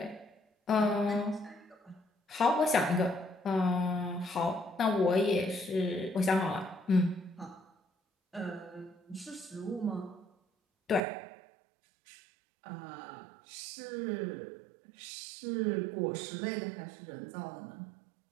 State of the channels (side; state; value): left; drops out; at 11.0 s